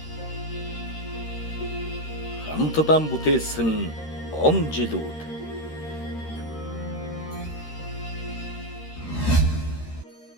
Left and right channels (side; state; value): right; late; 13 ms